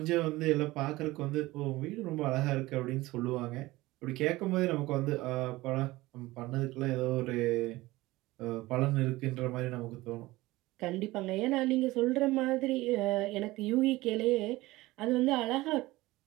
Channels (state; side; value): quieter; left; 19.1 dB